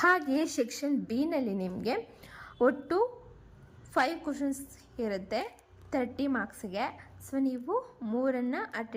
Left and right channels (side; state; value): both; identical; correlation 1.00